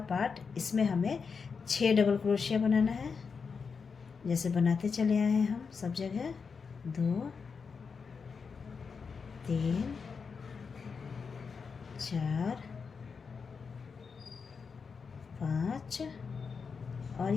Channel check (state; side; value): quieter; right; 5.5 dB